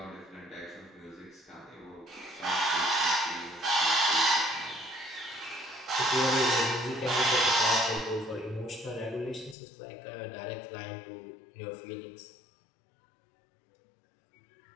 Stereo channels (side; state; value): right; drops out; at 9.6 s